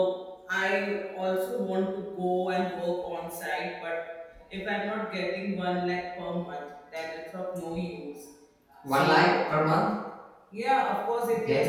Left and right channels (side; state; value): both; identical; correlation 1.00